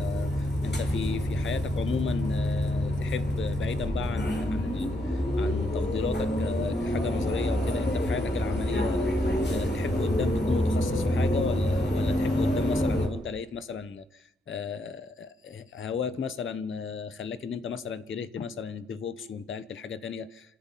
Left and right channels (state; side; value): normal; both; correlation 0.76